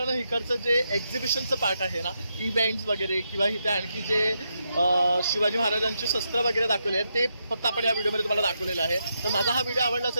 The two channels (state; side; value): inverted; both; correlation -0.82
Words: ना इकडचं जे एक्झिबिशनचं पार्ट आहे ना, इव्हेंट्स वगैरे किंवा इथे आणखी जे शिवाजी महाराजांचे शस्त्र वगैरे दाखवले आहेत ते फक्त आपण या व्हिडिओमध्ये तुम्हाला दाखवलेलं आहे. तर माझा हा व्हिडिओ आवडला